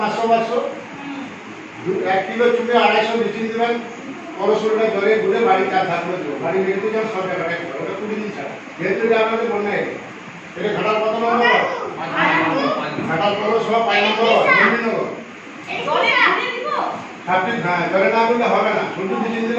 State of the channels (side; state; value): both; identical; correlation 1.00